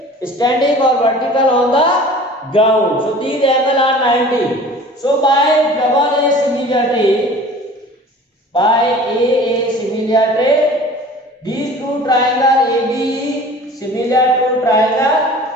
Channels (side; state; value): both; normal; correlation 0.44